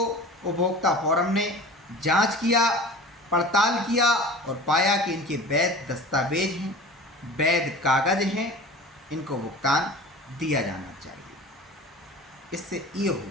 उपभोक्ता फोरम ने जांच किया, पड़ताल किया और पाया कि इनके वैध दस्तावेज हैं, वैध कागज हैं, इनको भुगतान दिया जाना चाहिए। इससे ये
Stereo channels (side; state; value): both; normal; correlation 0.38